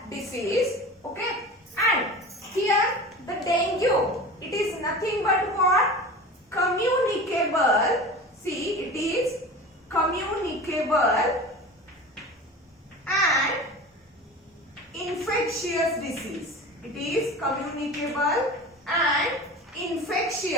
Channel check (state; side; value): normal; both; correlation 0.34